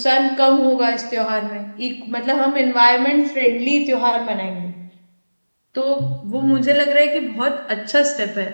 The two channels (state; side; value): inverted; both; correlation -1.00